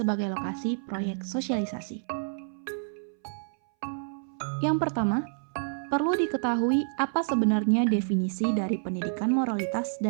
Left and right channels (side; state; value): left; silent; 59 dB below the other